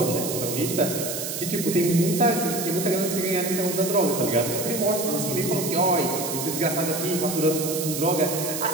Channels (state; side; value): noise; right; hiss, 5 dB below the sound